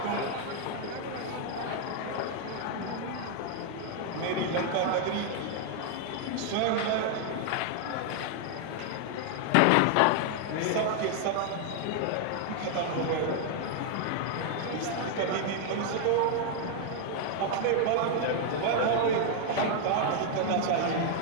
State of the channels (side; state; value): both; different; correlation 0.00